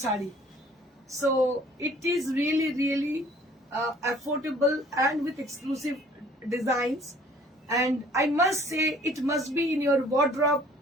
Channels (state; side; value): normal; both; correlation 0.55